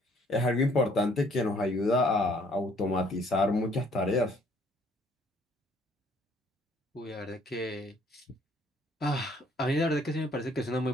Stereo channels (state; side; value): normal; both; correlation 0.62